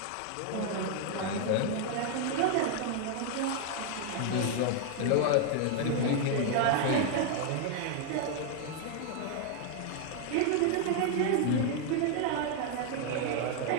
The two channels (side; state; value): both; different; correlation 0.00